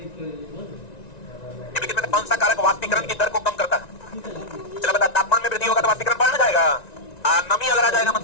निम्नलिखित में कौन सा कारक वाष्पीकरण की दर को कम करता है? चलो बता, तापमान में वृद्धि होगा तो वाष्पीकरण बढ़ जाएगा, नमी अगर आ जाएगा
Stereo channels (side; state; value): right; late; 1.9 ms